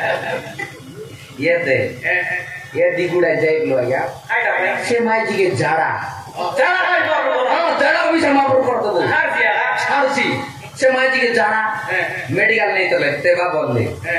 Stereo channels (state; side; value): identical; both; correlation 1.00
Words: ये दिगुड़ा जाइलो या से माई जी के जाड़ा हां जाड़ा भी समाप्त कर दो छाड़सी से माई जी के जाड़ा मेडिकल नहीं तो लेते बा बोल दे